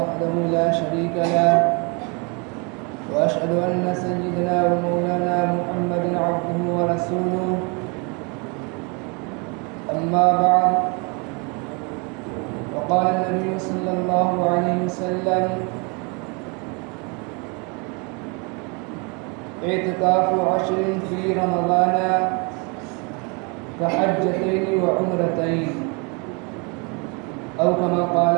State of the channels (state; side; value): quieter; left; 32.4 dB